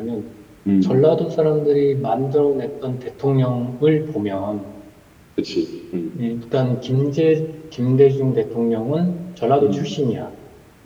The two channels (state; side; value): identical; both; correlation 1.00